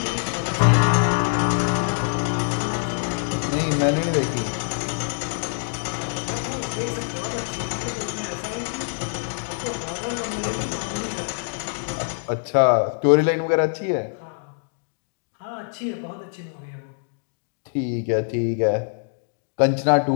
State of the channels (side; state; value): right; silent; digital silence